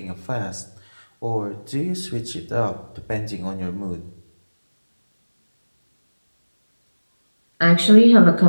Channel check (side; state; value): both; inverted; correlation -1.00